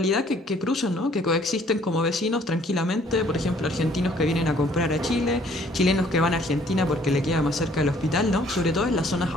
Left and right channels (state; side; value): normal; both; correlation 0.60